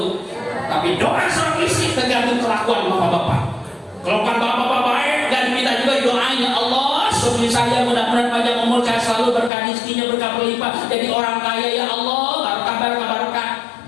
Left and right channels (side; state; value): right; drops out; at 9.5 s